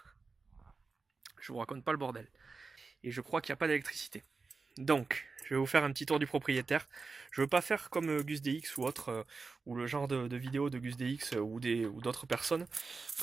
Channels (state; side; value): quieter; left; 4.3 dB